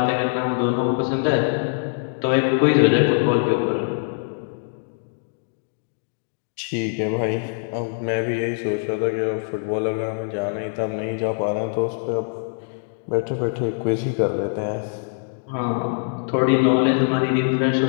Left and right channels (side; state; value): right; silent; digital silence